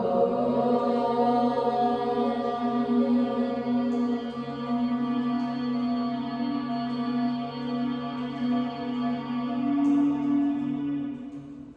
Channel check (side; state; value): both; identical; correlation 1.00